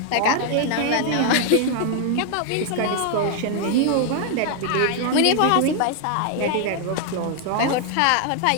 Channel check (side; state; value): both; different; correlation 0.00